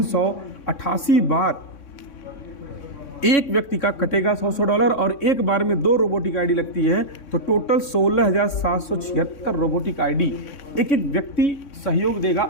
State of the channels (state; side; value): late; right; 3.6 ms